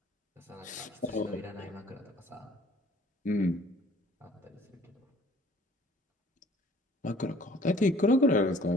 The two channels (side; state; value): both; normal; correlation 0.54